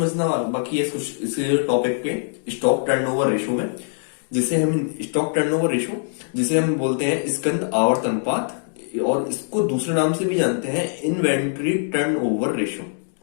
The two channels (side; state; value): right; silent; digital silence